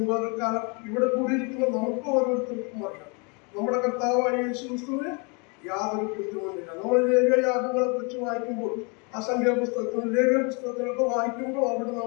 പകൽക്കാലം ഇവിടെ കൂടിയിരിക്കുന്ന നമുക്ക് ഓരോരുത്തർക്കും അറിയാം നമ്മുടെ കർത്താവായ യേശുക്രിസ്തുവിന് യാതൊരു കുറ്റവുമില്ല. നമ്മൾ ലേവ്യയാഗങ്ങളെ കുറിച്ച് വായിക്കുമ്പോൾ അസംഖ്യ പുസ്തകത്തിലും ലേവ്യ പുസ്തകത്തിലൊക്കെ വായിക്കുമ്പോൾ അവിടെ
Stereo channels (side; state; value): right; quieter; 33.1 dB